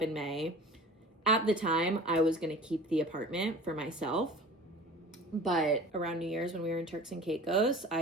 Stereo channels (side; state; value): both; normal; correlation 0.40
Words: in May. At the time, I was going to keep the apartment for myself. But around New Year's when we were in Turks and Caicos,